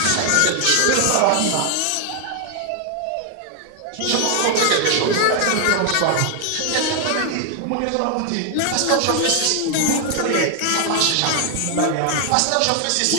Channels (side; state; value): both; different; correlation 0.00